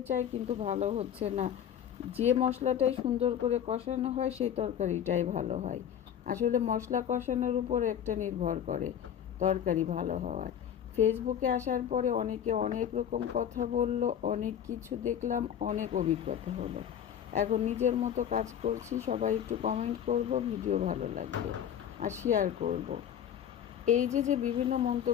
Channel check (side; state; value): right; quieter; 9.4 dB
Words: চাই কিন্তু ভালো হচ্ছে না। যে মশলাটাই সুন্দর করে কষানো হয় সেই তরকারিটাই ভালো হয়। আসলে মশলা কষানোর উপর একটা নির্ভর করে তরকারি ভালো হওয়ার। ফেসবুকে আসার পরে অনেকে অনেক রকম কথা বলল, অনেক কিছু দেখলাম, অনেক অভিজ্ঞতা হলো। এখন নিজের মতো কাজ করছি। সবাই একটু কমেন্ট করব ভিডিও ভালো লাগলে, আর শেয়ার করব। এই যে বিভিন্ন